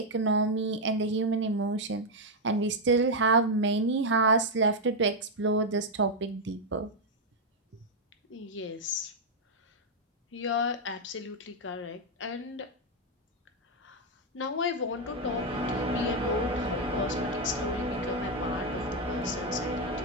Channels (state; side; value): normal; both; correlation 0.01